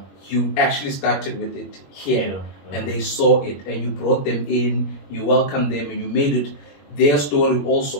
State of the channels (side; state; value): right; late; 21 ms